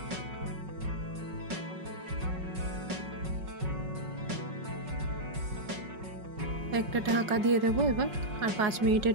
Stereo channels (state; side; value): late; left; 5.4 ms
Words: একটা ঢাকা দিয়ে দেবো এবার, আর 5 মিনিটের